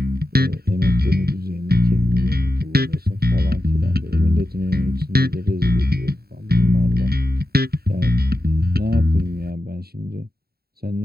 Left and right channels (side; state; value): left; late; 0.45 ms